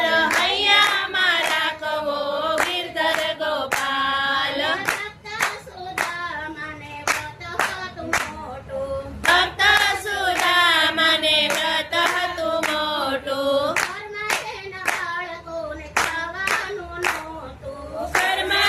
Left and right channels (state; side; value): identical; both; correlation 1.00